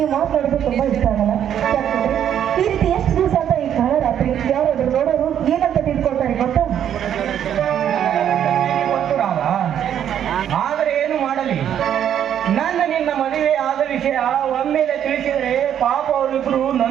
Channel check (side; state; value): left; quieter; 9.7 dB